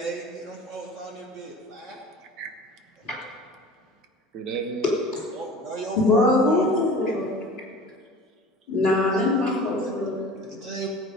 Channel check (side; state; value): both; normal; correlation 0.41